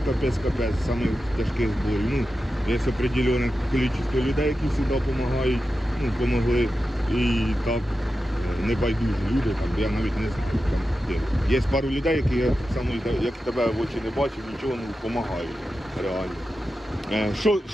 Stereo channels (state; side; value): normal; both; correlation 0.91